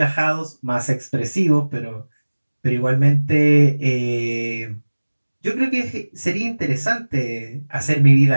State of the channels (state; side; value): inverted; both; correlation -1.00